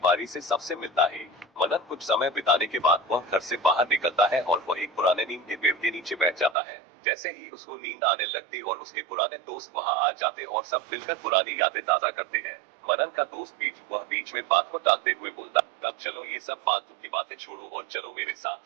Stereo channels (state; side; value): drops out; left; at 6.6 s